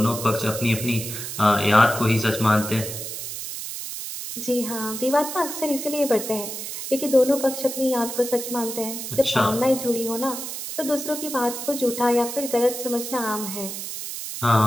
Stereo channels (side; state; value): right; noise; hiss, 7 dB below the sound